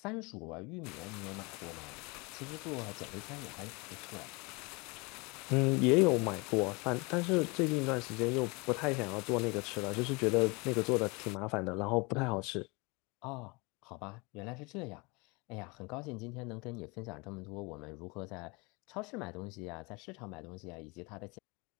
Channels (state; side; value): quieter; right; 27.6 dB